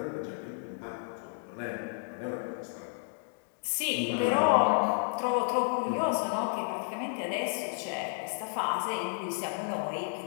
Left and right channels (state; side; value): silent; right; 56 dB below the other